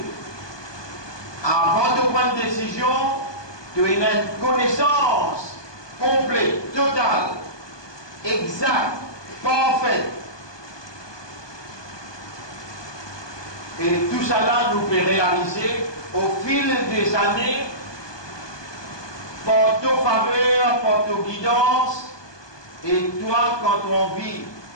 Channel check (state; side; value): late; right; 1.2 ms